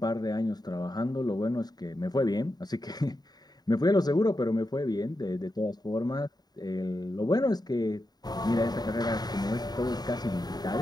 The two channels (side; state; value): right; late; 0.19 ms